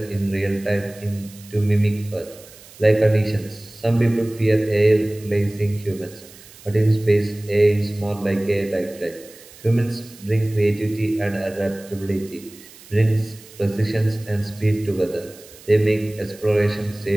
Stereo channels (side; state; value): right; noise; hiss, 21 dB below the sound